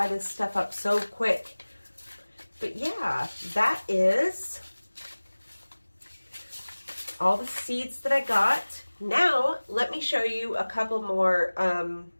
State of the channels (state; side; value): inverted; both; correlation -1.00